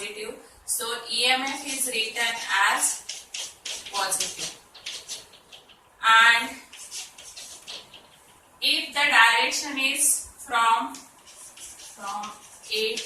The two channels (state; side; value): identical; both; correlation 1.00